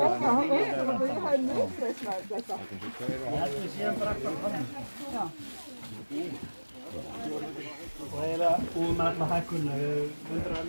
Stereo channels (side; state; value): both; inverted; correlation -1.00